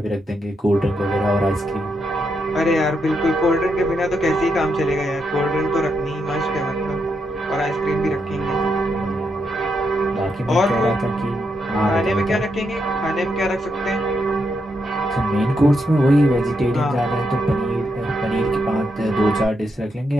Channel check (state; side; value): normal; both; correlation 0.81